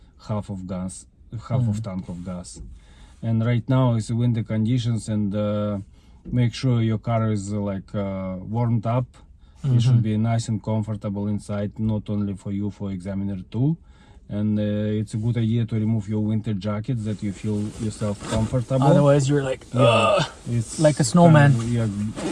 half of tank of gas. And right now it's winter conditions, and make sure your car is warmed up. It should be nice and comfortable inside, not only for you, for examiner too. And it's a good idea to remove your winter jacket, that you feel yourself comfortable. Otherwise you're like, it's like a snowman.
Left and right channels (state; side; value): identical; both; correlation 1.00